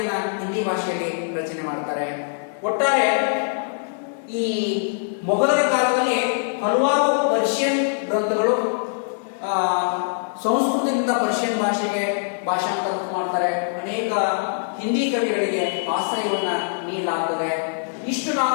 ಹಿಂದಿ ಭಾಷೆಯಲ್ಲಿ ರಚನೆ ಮಾಡ್ತಾರೆ. ಒಟ್ಟಾರೆ ಈ ಮೊಘಲರ ಕಾಲದಲ್ಲಿ ಹಲವಾರು ಪರ್ಷಿಯನ್ ಗ್ರಂಥಗಳು ಸಂಸ್ಕೃತದಿಂದ ಪರ್ಷಿಯನ್ ಭಾಷೆಗೆ ಭಾಷಾಂತರ ಮಾಡ್ತಾರೆ. ಅನೇಕ ಹಿಂದಿ ಕವಿಗಳಿಗೆ ಆಶ್ರಯವನ್ನ ನೀಡಲಾಗ್ತದೆ. ಇಷ್ಟು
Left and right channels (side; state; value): right; silent; digital silence